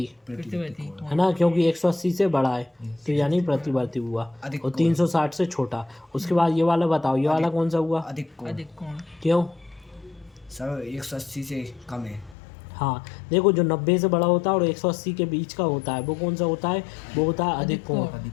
प्रतिवाती कोण। है ना, क्योंकि 180 से बड़ा है तो यानी प्रतिवर्ती हुआ। अधिक और कोण। 360 से छोटा। उसके बाद ये वाला बताओ, ये वाला कौन सा हुआ, अधिक कोण। अधिक कोण क्यों। सर 180 से कम है। हाँ देखो, जो 90 से बड़ा होता है और 180 के बीच का होता है वो कौन सा होता है, वो होता है अधिक कोण,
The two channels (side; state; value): right; drops out; at 12.4 s